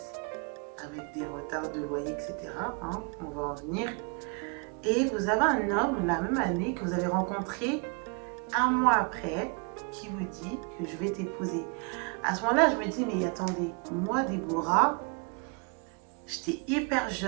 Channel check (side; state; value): left; quieter; 34.8 dB